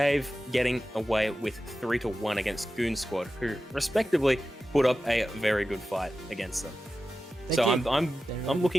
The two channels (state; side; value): normal; both; correlation 0.93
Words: getting away with 3-1 against Goon Squad, who respectively put up a very good fight against them. I'm